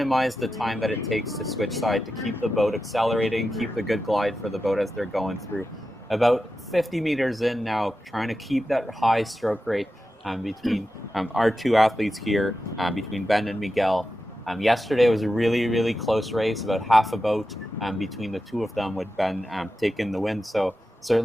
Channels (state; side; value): normal; both; correlation 0.91